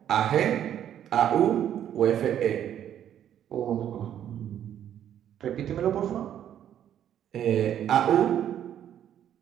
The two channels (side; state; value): left; quieter; 10.3 dB